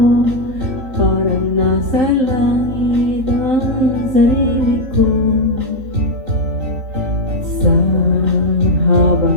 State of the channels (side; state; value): left; late; 4.4 ms